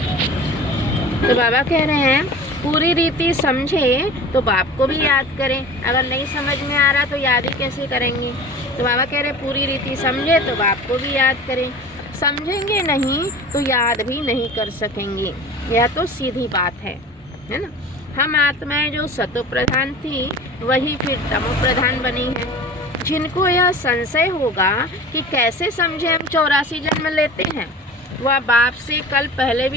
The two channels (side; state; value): both; normal; correlation 0.38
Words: तो बाबा कह रहे हैं पूरी रीति समझे तो बाप को भी याद करें। अगर नहीं समझ में आ रहा तो याद ही कैसे करेंगे। तो बाबा कह रहे पूरी रीति समझे तो बाप को भी याद करें। समझेंगे नहीं तो याद भी नहीं कर सकेंगे। यह तो सीधी बात है ना। हम आत्माएं जो सतो प्रधान थी वही फिर तमो प्रधान बनी है। जिनको यह संशय होगा कि कैसे समझे हम 84 जन्म लेते हैं, वह बाप से कल पहले